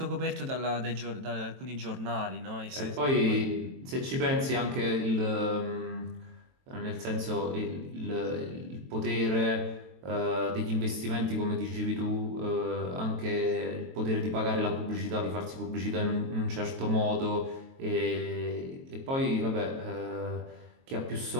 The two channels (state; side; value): late; left; 22 ms